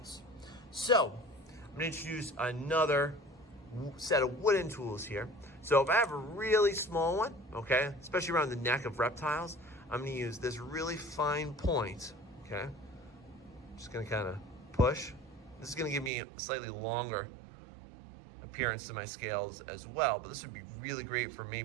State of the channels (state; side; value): drops out; left; at 16.1 s